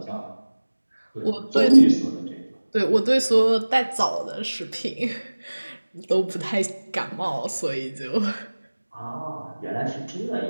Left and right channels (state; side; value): inverted; both; correlation -1.00